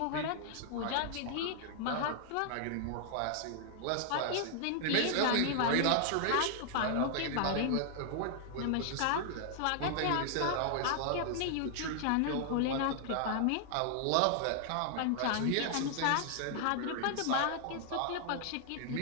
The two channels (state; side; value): different; both; correlation 0.00